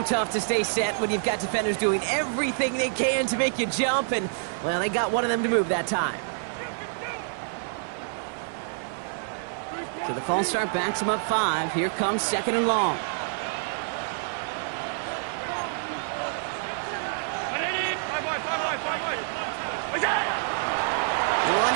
tough to stay set when you've got defenders doing everything they can to make you jump, and, well, they got one of them to move that time. So the false start backs him up 5. Here comes 2nd and long.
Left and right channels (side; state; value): left; silent; 55 dB below the other